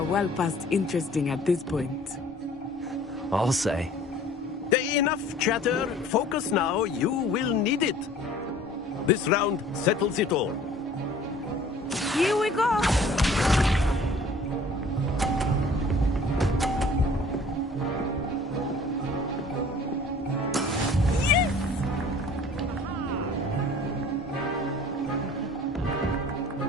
well past interesting at this point. I'll say. Enough chatter. Focus now. You will need it. This round settles it all. Here we go.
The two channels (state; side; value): normal; both; correlation 0.50